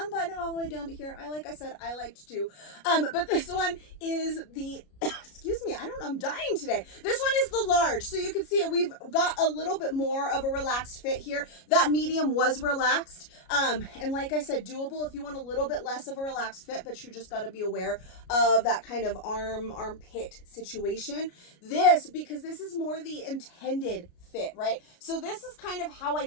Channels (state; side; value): late; right; 33 ms